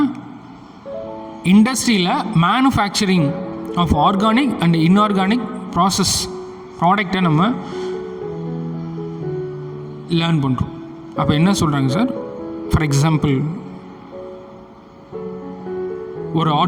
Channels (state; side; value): identical; both; correlation 1.00